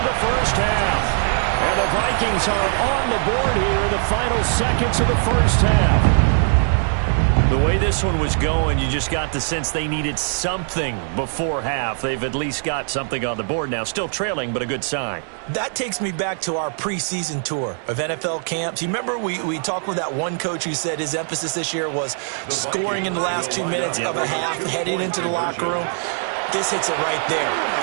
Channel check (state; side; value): silent; left; 59 dB below the other